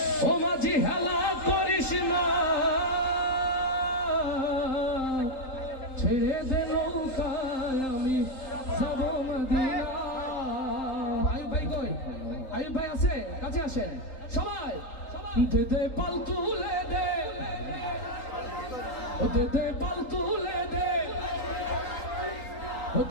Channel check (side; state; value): right; late; 3.8 ms